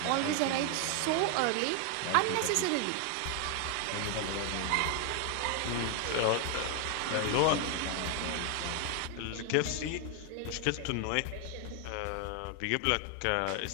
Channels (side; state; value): both; different; correlation 0.00